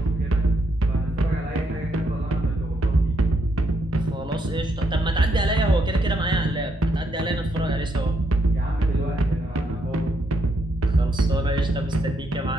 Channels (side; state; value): both; normal; correlation 0.76